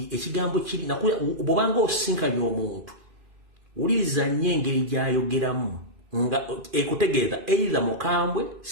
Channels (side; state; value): left; late; 2.4 ms